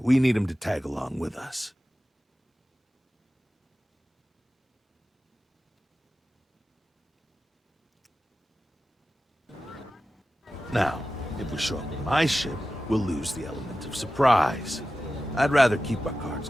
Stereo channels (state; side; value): normal; both; correlation 0.94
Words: we need him to tag along with us. Now, if we show up in my ship, we'll lose the element of surprise. I'd rather keep our cards